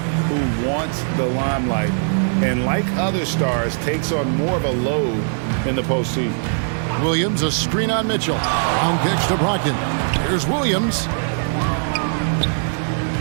who wants the limelight, and like other stars, takes on more of a load in the postseason. Williams, a screen on Mitchell. Brown kicks to Brogdon. Here's Williams.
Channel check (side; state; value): left; silent; 66 dB below the other